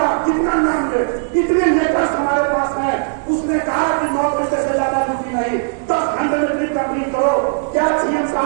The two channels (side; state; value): left; silent; 68 dB below the other